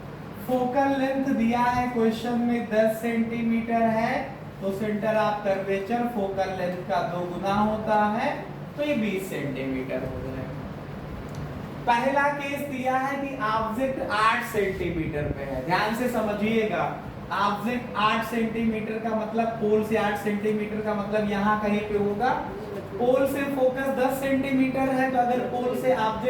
फोकल लेंथ दिया है क्वेश्चन में 10 सेंटीमीटर है, तो centre of curvature focal length का 2 गुना होता है, तो ये 20 सेंटीमीटर हो जाएगा। पहला केस दिया है कि ऑब्जेक्ट 8 सेंटीमीटर पे है, ध्यान से समझिएगा। ऑब्जेक्ट 8 सेंटीमीटर का मतलब पोल से 8 सेंटीमीटर का मतलब यहाँ कहीं पे होगा। पोल से फोकस 10 सेंटीमीटर है, तो अगर पोल से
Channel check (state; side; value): identical; both; correlation 1.00